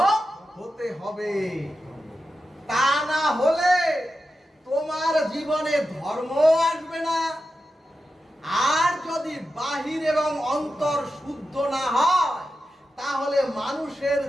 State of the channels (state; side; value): normal; both; correlation 0.90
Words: হতে হবে। তা না হলে তোমার জীবনে ধর্ম আসবে না। আর যদি বাহির এবং অন্তর শুদ্ধ না হয় তাহলে মানুষের